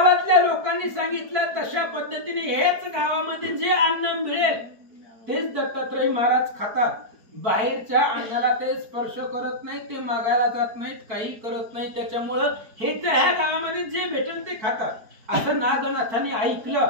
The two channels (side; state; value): left; late; 4.5 ms